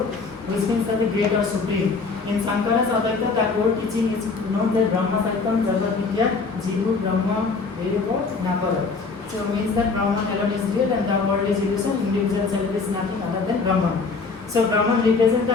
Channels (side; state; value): right; quieter; 4.4 dB